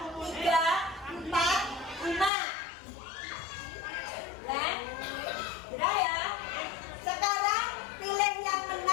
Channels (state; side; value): drops out; right; at 2.3 s